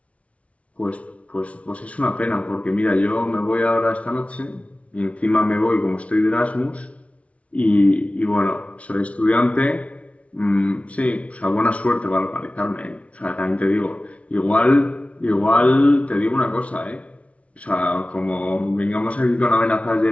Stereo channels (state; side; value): late; right; 0.064 ms